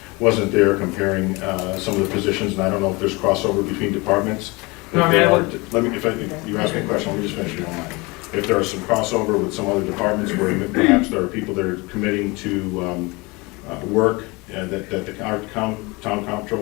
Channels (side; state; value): right; quieter; 25.3 dB